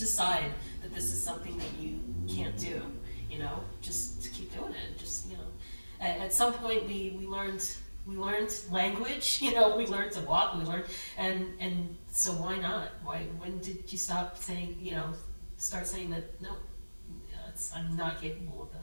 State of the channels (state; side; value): inverted; both; correlation -1.00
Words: that this is something that you can't do? Just to keep doing it. Just, at some point we learned language, we learned to walk, and so why not? When did you stop saying, start saying that, no, I'm not capable of